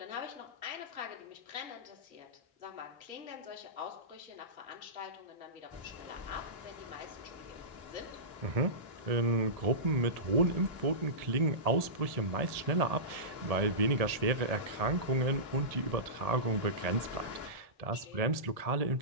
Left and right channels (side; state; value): left; late; 1.7 ms